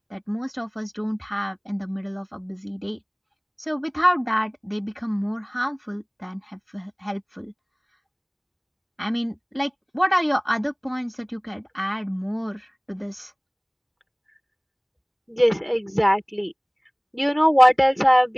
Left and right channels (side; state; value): both; identical; correlation 1.00